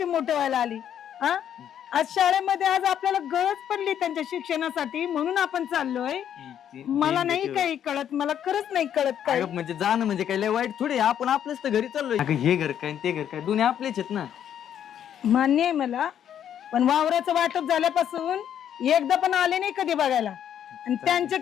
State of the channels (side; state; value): right; quieter; 9.7 dB